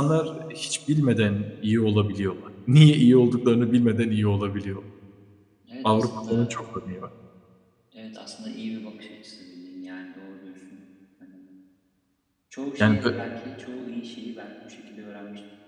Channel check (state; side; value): identical; both; correlation 1.00